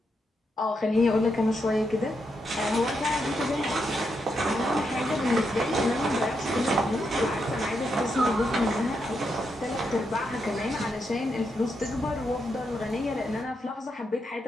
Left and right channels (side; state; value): both; normal; correlation 0.82